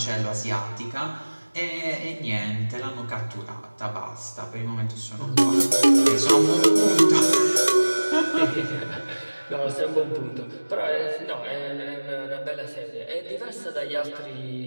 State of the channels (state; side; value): inverted; both; correlation -1.00